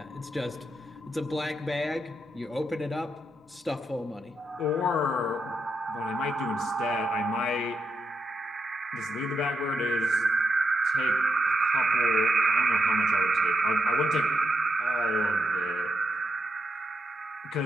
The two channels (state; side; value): normal; both; correlation 0.83